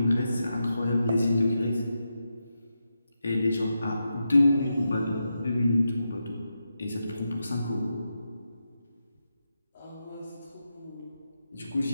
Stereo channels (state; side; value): inverted; both; correlation -0.88